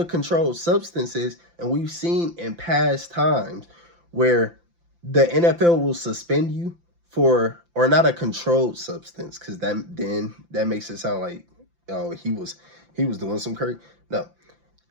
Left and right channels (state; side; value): late; left; 5.8 ms